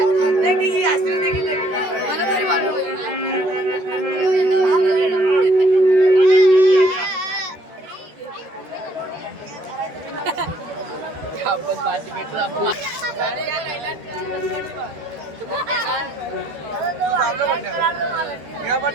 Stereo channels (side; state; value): left; late; 13 ms